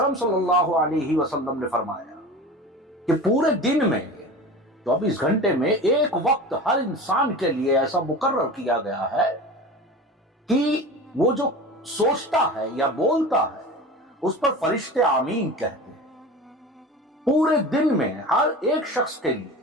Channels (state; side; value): normal; both; correlation 0.33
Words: सल्लल्लाहु अलैहि वसल्लम ने फरमाया कि पूरे दिन में 24 घंटे में एक वक्त हर इंसान के लिए ऐसा मुकर्रर किया गया है कि वो जो सोचता है या बोलता है उस पर फरिश्ते आमीन कहते हैं। पूरे दिन में हर एक शख्स के लिए